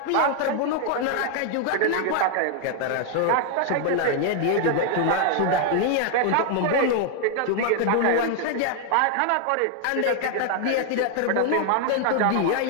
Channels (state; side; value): different; both; correlation 0.00